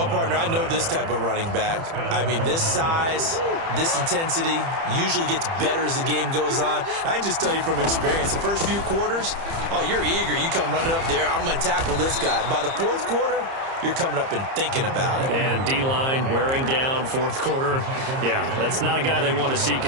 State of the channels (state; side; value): late; left; 30 ms